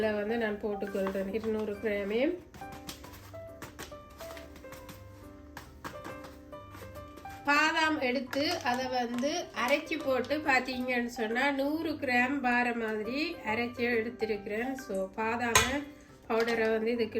நான் போட்டுக்கொள்கிறேன் 200 கிராமே. பாதாம் எடுத்து அதை அரைச்சி போட்டு பார்த்தீங்கன்னு சொன்னால் 100 கிராம் பார மாதிரி அரைச்சி எடுத்துருக்கிறேன். ஸோ பாதாம பவுடரை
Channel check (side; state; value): both; identical; correlation 1.00